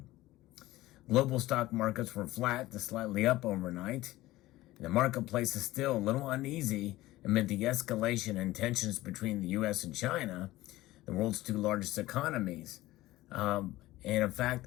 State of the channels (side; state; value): right; quieter; 17.3 dB